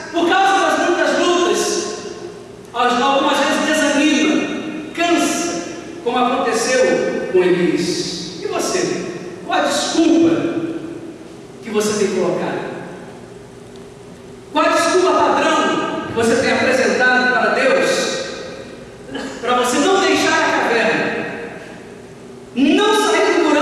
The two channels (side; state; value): both; identical; correlation 1.00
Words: por causa das muitas lutas, algumas vezes desanima, cansa, como aconteceu com Elias. E você? Qual a desculpa que você tem colocado? Qual a desculpa padrão que você tem apresentado para Deus, para você não deixar a caverna, não sair do